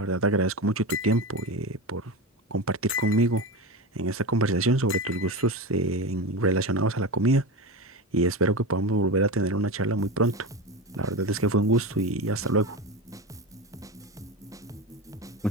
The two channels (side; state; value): both; normal; correlation 0.23